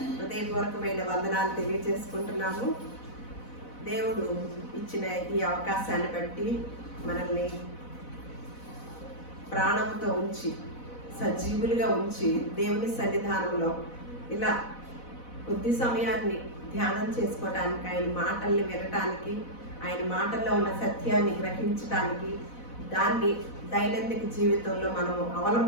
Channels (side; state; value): right; late; 4.0 ms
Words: హృదయపూర్వకమైన వందనాలు తెలియజేసుకుంటున్నాము. దేవుడు ఇచ్చిన ఈ అవకాశాన్ని బట్టి మనల్ని ప్రాణంతో ఉంచి సజీవులుగా ఉంచి దేవుని సన్నిధానంలో ఇలా కొద్ది సమయాన్ని ధ్యానం చేసుకోవటానికి, ఆయన మాటల్ని వినటానికి, ఆయన మాటల్లో ఉన్న సత్యాన్ని గ్రహించటానికి, దాన్ని దైనందిక జీవితంలో మనము